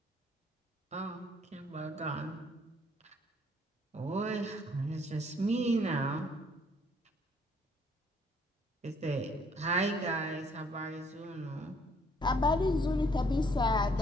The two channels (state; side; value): normal; both; correlation 0.63